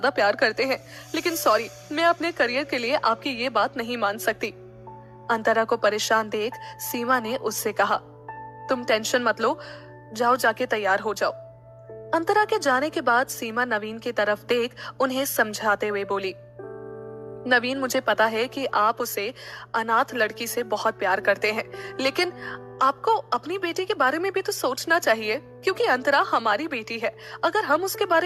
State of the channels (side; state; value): both; identical; correlation 1.00